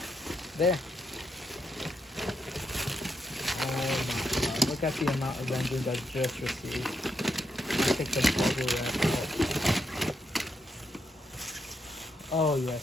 Oh my god! Look at the amount of engines I just received. I take the bubble wrap out. Oh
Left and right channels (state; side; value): normal; both; correlation 0.80